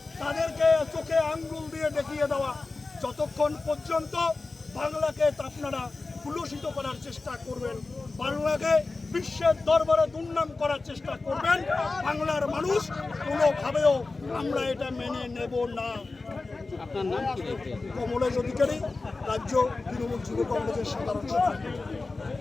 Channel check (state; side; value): quieter; right; 3.6 dB